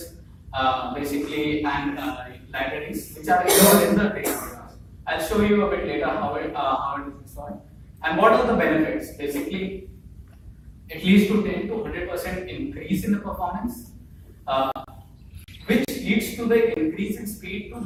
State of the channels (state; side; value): identical; both; correlation 1.00